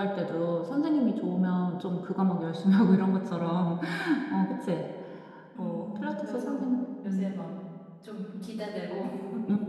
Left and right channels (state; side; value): identical; both; correlation 1.00